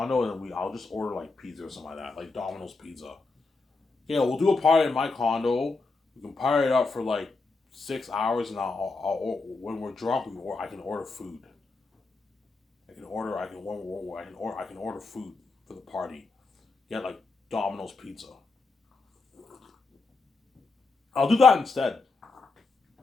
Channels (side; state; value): right; quieter; 3.8 dB